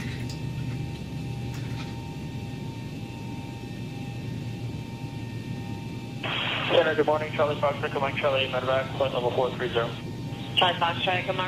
Center, good morning. Charlie Fox, Mike Charlie, medevac, flight level 430. Charlie Fox, Charlie,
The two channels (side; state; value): left; noise; hum, 25 dB below the sound